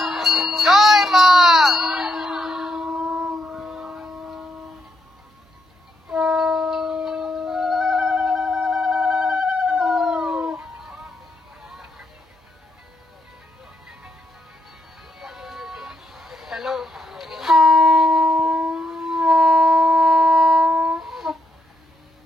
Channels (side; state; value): both; normal; correlation 0.79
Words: জয়, মা হ্যালো।